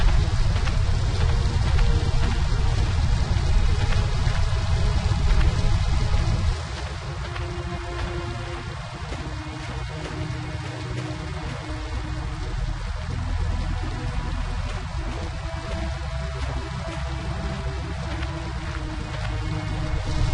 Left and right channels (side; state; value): both; identical; correlation 1.00